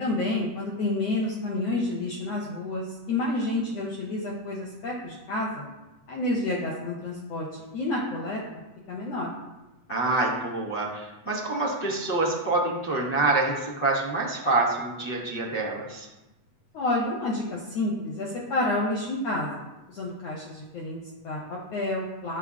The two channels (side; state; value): right; late; 8.0 ms